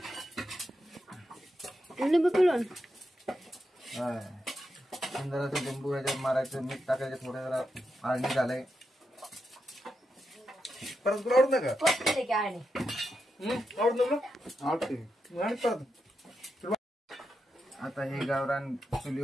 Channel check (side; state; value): both; normal; correlation 0.86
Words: लिंबू पिळून सुंदराचं लिंबू ह्याच्यात मारायचं, मीठ टाकायचं, थोडं जरा आळणी झालंय. परत तुला आवडत नाही का? आवडत ना? आवडते. आणि परत आता हे गावरान